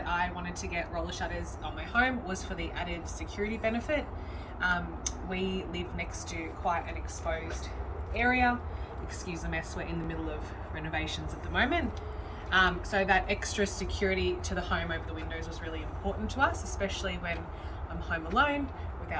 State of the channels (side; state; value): both; identical; correlation 1.00